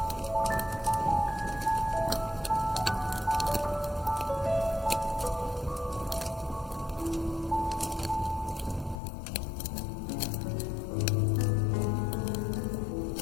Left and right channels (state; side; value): drops out; right; at 9.0 s